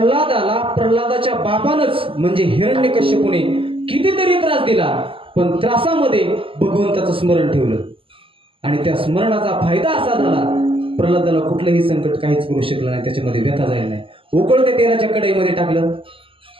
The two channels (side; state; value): left; late; 0.26 ms